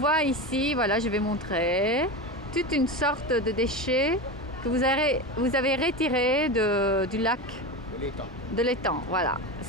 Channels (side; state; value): both; normal; correlation 0.22